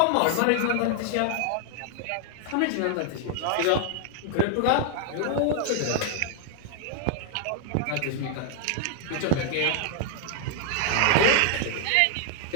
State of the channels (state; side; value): different; both; correlation 0.00